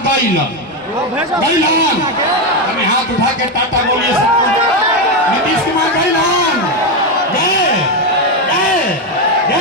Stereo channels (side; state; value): both; normal; correlation 0.09